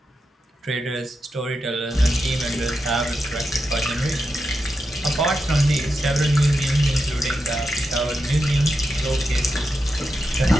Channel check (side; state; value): both; normal; correlation 0.88